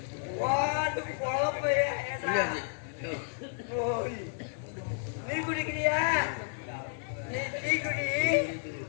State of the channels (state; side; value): silent; right; 57 dB below the other